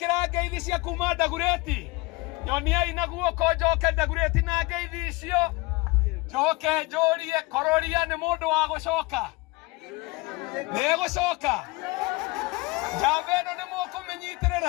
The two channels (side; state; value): right; quieter; 23.5 dB